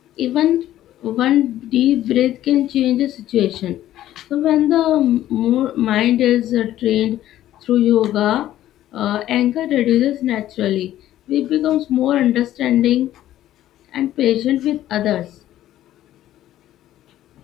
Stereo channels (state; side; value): quieter; right; 13.2 dB